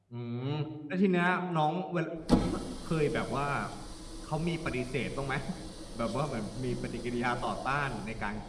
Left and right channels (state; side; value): identical; both; correlation 1.00